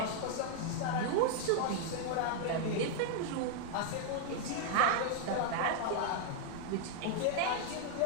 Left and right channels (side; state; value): both; different; correlation 0.00